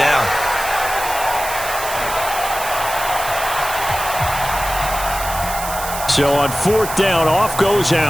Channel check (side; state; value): right; noise; hiss, 8 dB below the sound